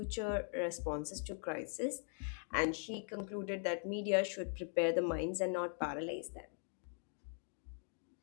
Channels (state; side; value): silent; right; 50 dB below the other